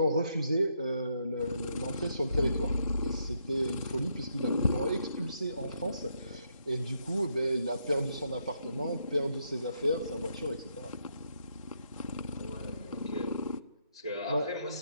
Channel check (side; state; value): both; inverted; correlation -0.77